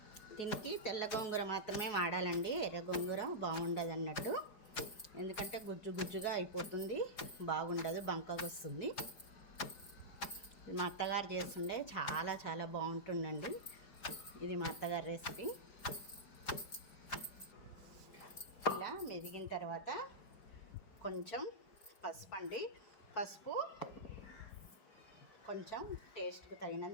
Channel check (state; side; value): late; right; 4.9 ms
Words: దీనికి తెల్ల గోంగూర మాత్రమే వాడాలండి. ఎర్ర గోంగూర బాగుండదు అన్నట్టు, ఎందుకంటే గుజ్జు గుజ్జుగా అయిపోతుంది, బాగుండదు, బంకగా వస్తుంది. మా అత్తగారు చేస్తుండే చాలా చాలా బాగుంటుందండి. ఇది మా అత్తగారి రెసిపీ. ఇలా మెదిగిన తర్వాత కొంచెం పసుపు అండి, పసుపు కొంచెం టేస్ట్కి